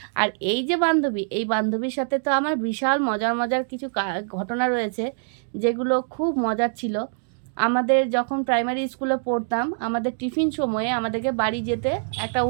আর এই যে বান্ধবী, এই বান্ধবীর সাথে তো আমার বিশাল মজার মজার কিছু ঘটনা রয়েছে, যেগুলো খুব মজার ছিল। আমাদের যখন প্রাইমারি স্কুলে পড়তাম, আমাদের টিফিন সময়ে আমাদেরকে বাড়ি যেতে একটা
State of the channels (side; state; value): left; silent; digital silence